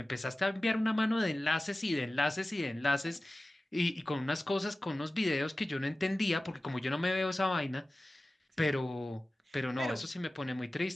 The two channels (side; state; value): both; normal; correlation 0.96